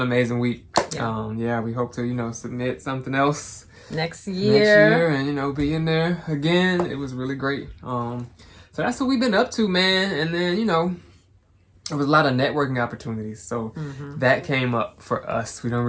amazing week. Yeah. We hope to submit something else next year and be in there again. It was really great. So that's what we've been up to, man. And then there was a lot of networking opportunities. So that came up for us. We don't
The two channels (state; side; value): identical; both; correlation 1.00